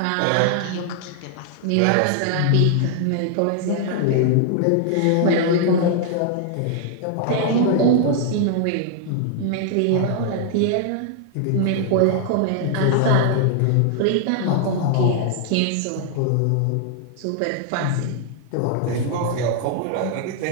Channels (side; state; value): both; different; correlation 0.00